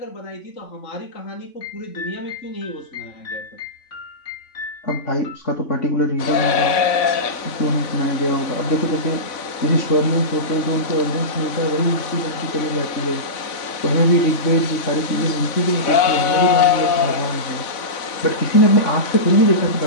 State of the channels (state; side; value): late; right; 3.5 ms